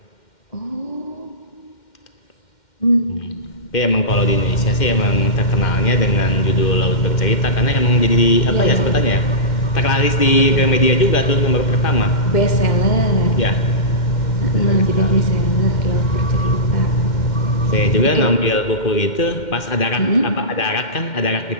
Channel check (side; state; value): right; late; 2.1 ms